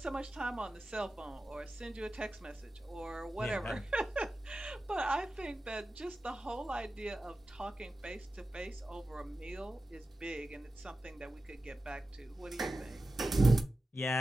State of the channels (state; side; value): normal; both; correlation 0.93